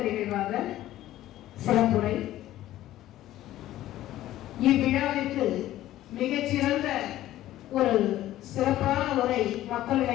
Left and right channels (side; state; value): right; quieter; 14.2 dB